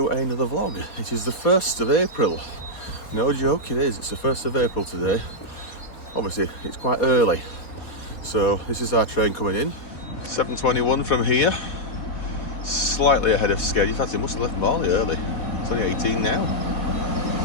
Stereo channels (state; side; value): late; right; 4.0 ms